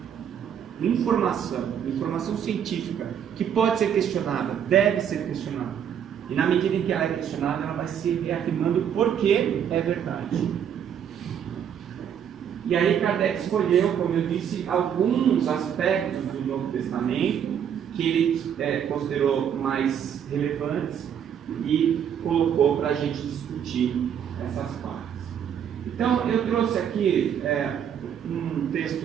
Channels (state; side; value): quieter; left; 8.7 dB